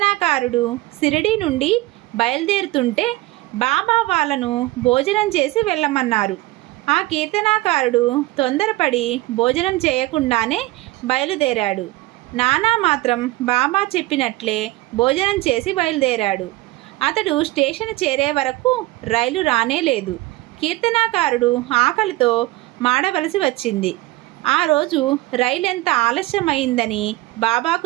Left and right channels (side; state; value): left; quieter; 19.3 dB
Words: షిరిడీ నుండి బయలుదేరుతుంటే బాబా వాళ్ళను భోజనం చేసి వెళ్ళమన్నారు. ఆ కీర్తనాకారుడు తొందరపడి భోజనం చేయకుండానే బయలుదేరాడు. నానా మాత్రం బాబా చెప్పినట్లే భోజనం చేసి బయలుదేరాడు. అతడు స్టేషన్ చేరే వరకు రైలు రానే లేదు. కీర్తనాకారుడు ఆకలితో మాడవలసి వచ్చింది. ఆ రోజు రైలు ఎంత ఆలస్యమైందని బాబాకు